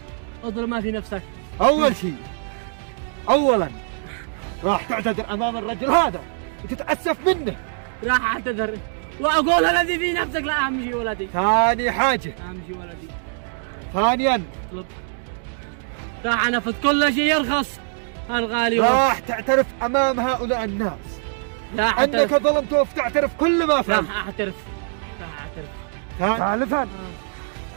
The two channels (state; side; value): silent; left; digital silence